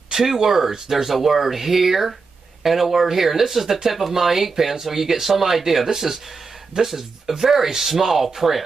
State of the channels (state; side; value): quieter; left; 4.5 dB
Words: two words. There's a word here and a word here. And this is the tip of my ink pen, so you get some idea. This is a very small